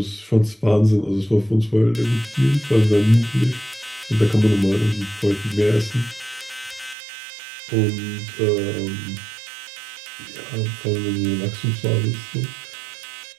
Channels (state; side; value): drops out; left; at 7.0 s